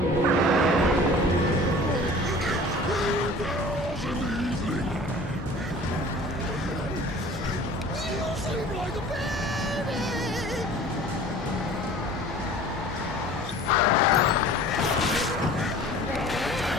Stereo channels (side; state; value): both; normal; correlation 0.45